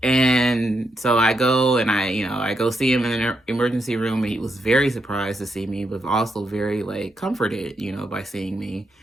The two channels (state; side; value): normal; both; correlation 0.81